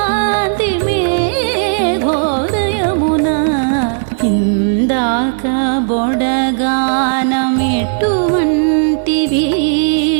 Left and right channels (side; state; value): left; silent; digital silence